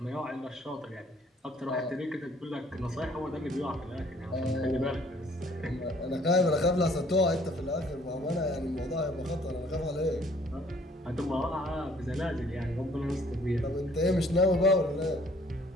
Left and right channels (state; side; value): normal; both; correlation 0.59